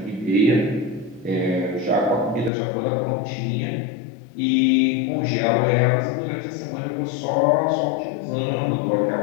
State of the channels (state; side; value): drops out; right; at 2.5 s